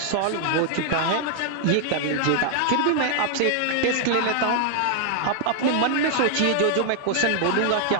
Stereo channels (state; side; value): different; both; correlation 0.00